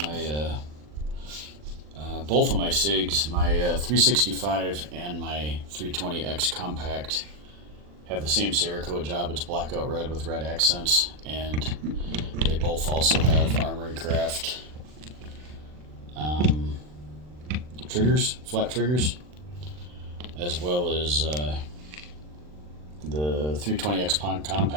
My both of my SIGs, my 365 and my 320X compact, have the same Cerakote job. It's blackout red with red accents, and they both also have Armory Craft triggers, flat triggers, as well as the 320X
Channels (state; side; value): late; left; 40 ms